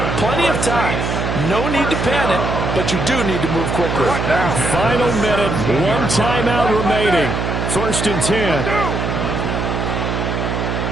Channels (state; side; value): noise; right; hum, 1 dB below the sound